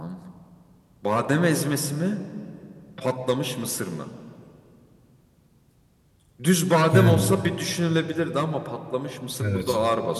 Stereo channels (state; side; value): identical; both; correlation 1.00